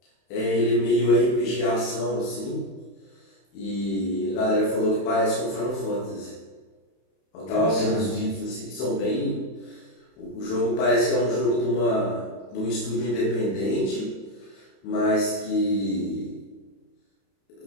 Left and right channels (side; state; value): right; late; 31 ms